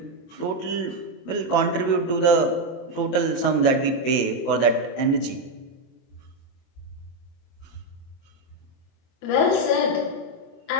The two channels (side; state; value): right; late; 23 ms